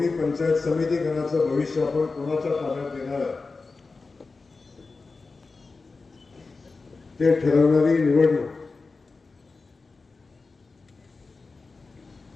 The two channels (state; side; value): quieter; right; 4.0 dB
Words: पंचायत समिती गणाचं भविष्य आपण कोणाच्या ताब्यात देणार आहे ते ठरवणारी निवडणूक.